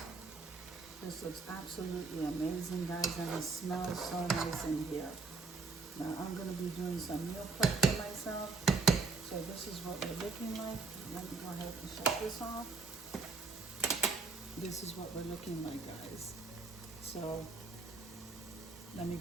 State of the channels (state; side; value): quieter; left; 4.2 dB